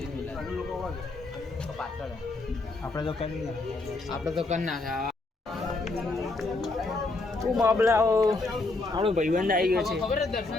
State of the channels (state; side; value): quieter; right; 3.2 dB